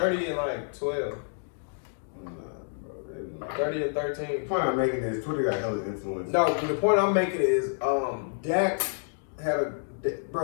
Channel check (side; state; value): right; silent; digital silence